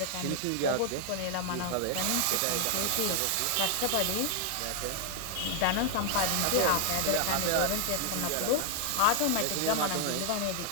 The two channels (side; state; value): both; different; correlation 0.00